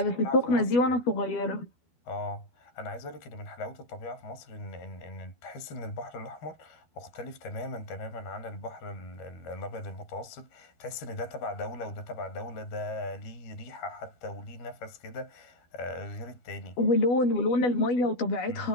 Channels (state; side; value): late; right; 13 ms